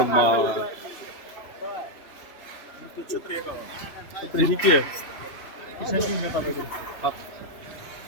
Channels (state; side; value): late; right; 3.0 ms